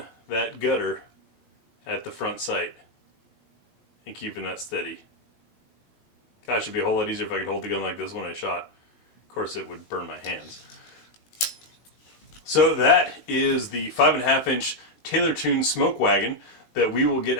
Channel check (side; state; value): right; late; 18 ms